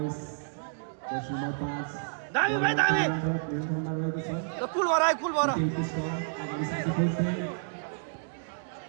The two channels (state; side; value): silent; left; digital silence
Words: number 5, दामी भाइ दामी कुल भएर आयो कुल भएर